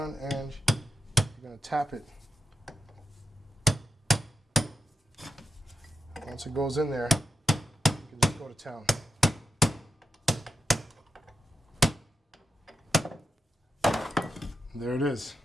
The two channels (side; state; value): both; normal; correlation 0.87